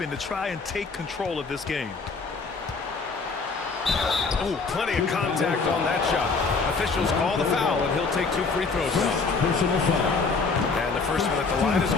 to try and take control of this game. Oh, plenty of contact on that shot. Officials call the foul, and he'll take 2 free throws now. Personal foul. And the first one at the line is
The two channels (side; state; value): right; quieter; 4.4 dB